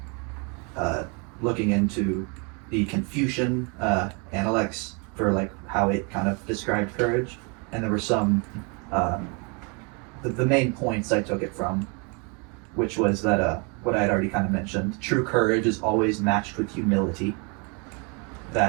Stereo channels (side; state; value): left; quieter; 33.2 dB